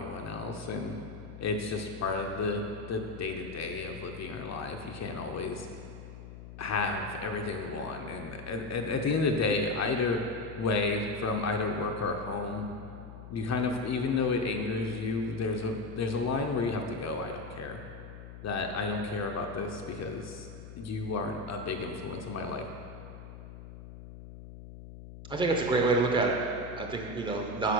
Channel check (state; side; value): noise; left; hum, 13 dB below the sound